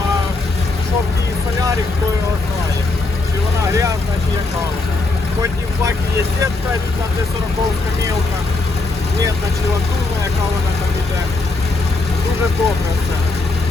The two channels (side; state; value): right; quieter; 3.3 dB